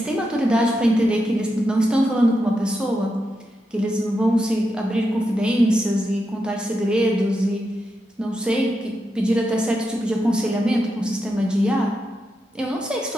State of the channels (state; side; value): normal; both; correlation 0.86